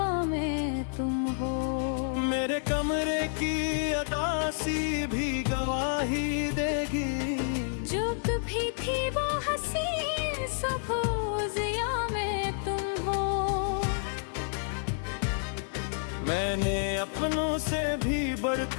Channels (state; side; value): silent; right; digital silence